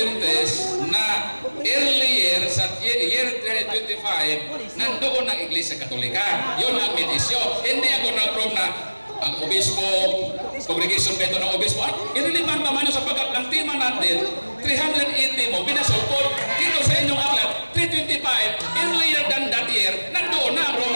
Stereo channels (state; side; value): inverted; both; correlation -1.00